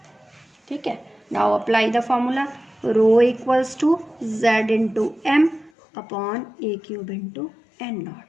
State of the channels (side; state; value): right; drops out; at 5.7 s